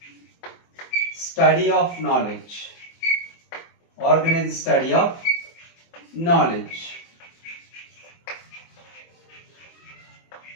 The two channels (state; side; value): late; right; 24 ms